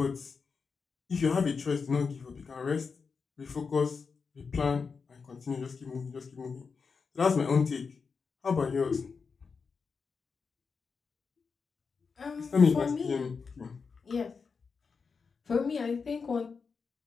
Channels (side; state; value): right; quieter; 5.2 dB